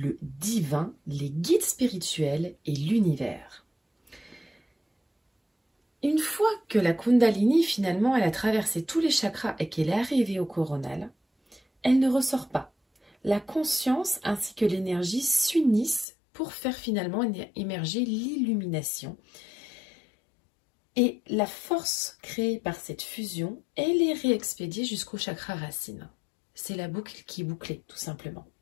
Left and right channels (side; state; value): right; drops out; at 16.1 s